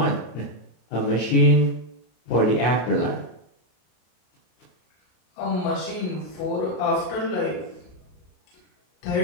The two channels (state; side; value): late; right; 33 ms